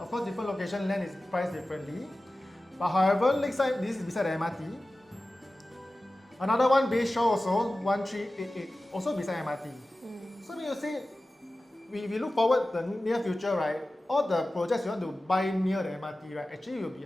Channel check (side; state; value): both; normal; correlation 0.96